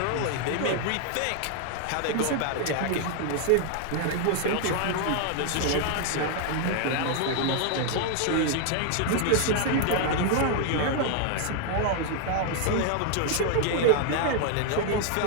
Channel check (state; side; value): different; both; correlation 0.00